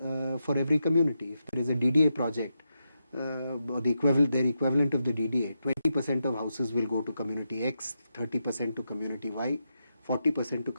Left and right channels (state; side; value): inverted; both; correlation -0.85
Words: for every community. If there is a DDA project, or their equivalent of the DDA, 20% of houses will go to community X, 30% to community Y, 40% to